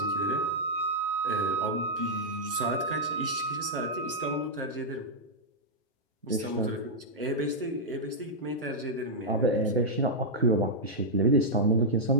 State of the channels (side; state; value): both; normal; correlation -0.06